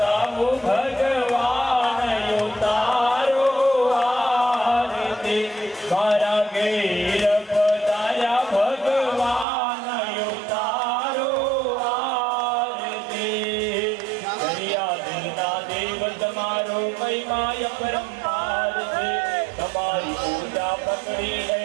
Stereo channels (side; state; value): left; drops out; at 9.5 s